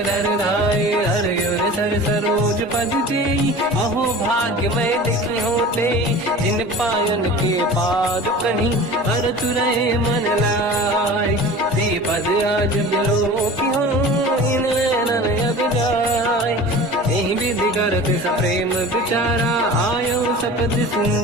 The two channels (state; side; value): normal; both; correlation 0.38